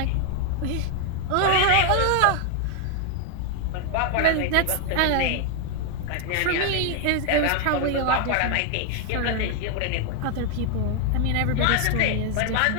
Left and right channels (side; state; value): both; different; correlation 0.00